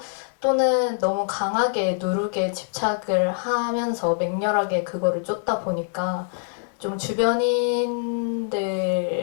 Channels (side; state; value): right; silent; digital silence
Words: 또는 너무 강하게 누룩에 집착을 하면서 맹렬하게 그거를 쫓다 보니까 좀 주변인들을